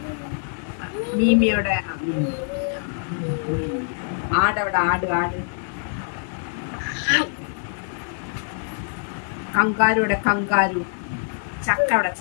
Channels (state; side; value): silent; right; 57 dB below the other